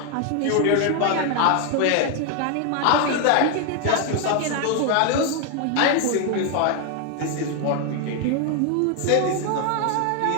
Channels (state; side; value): different; both; correlation 0.01